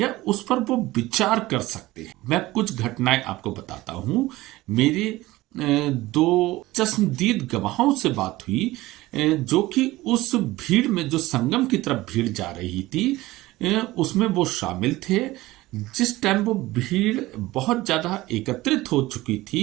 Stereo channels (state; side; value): quieter; left; 18.2 dB